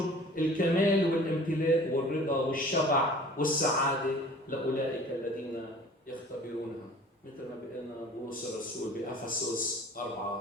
الكمال والامتلاء والرضا والشبع والسعادة لأولئك الذين يختبرونها، مثل ما بيقولنا بولس الرسول بأفسس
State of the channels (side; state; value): both; normal; correlation 0.46